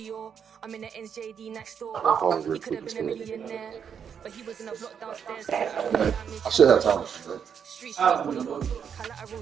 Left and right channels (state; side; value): quieter; left; 7.5 dB